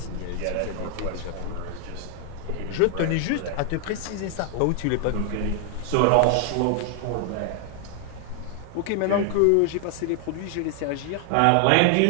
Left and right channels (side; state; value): both; different; correlation 0.00